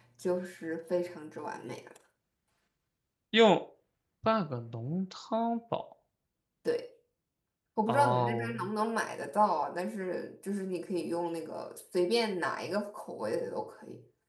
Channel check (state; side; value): identical; both; correlation 1.00